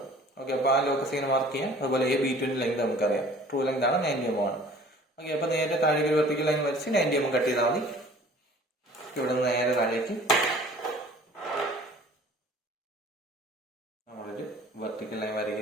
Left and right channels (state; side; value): normal; both; correlation 0.49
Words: ഓക്കെ, അപ്പോൾ ആ ലോക്കസ് ഇങ്ങനെ മാർക്ക് ചെയ്യാം. അതുപോലെ B2ന്റെ ലെങ്ത് നമുക്കറിയാം, ട്രൂ ലെങ്ത് ആണ് 90 mm ആണ്. ഓക്കെ, അപ്പോൾ നേരെ താഴേക്ക് ഒരു വെർട്ടിക്കൽ ലൈൻ വരച്ച് 90 mm കട്ട് ചെയ്താൽ മതി. ഇവിടെ നിന്ന് നേരെ താഴേക്ക് നമ്മളൊരു വെർട്ടിക്കൽ ലൈൻ